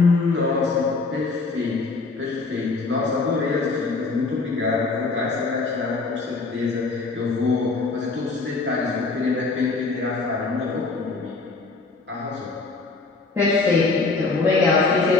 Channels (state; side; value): quieter; right; 3.9 dB